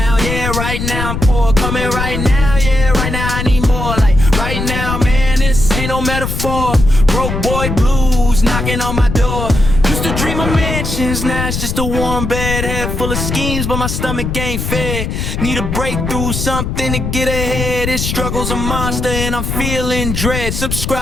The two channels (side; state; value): left; noise; rumble, 3 dB below the sound